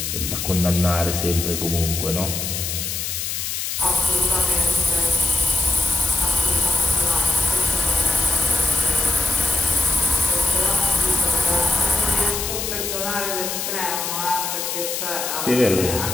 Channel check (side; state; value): left; noise; hiss, 3 dB below the sound